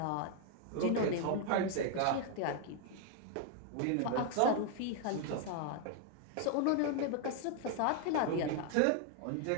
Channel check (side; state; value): both; different; correlation 0.00